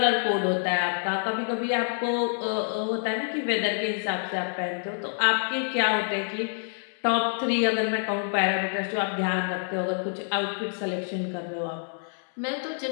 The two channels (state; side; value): silent; right; 60 dB below the other